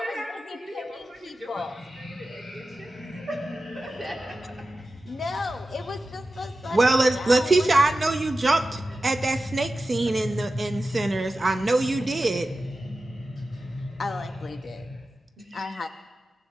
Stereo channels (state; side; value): normal; both; correlation 0.94